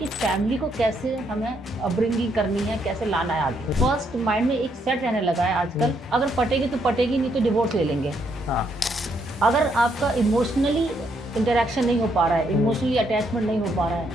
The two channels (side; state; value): both; normal; correlation 0.74